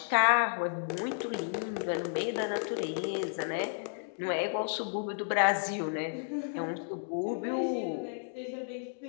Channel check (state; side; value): silent; right; digital silence